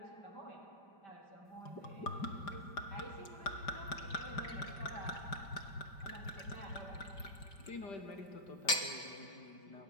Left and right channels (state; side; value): late; right; 5.1 ms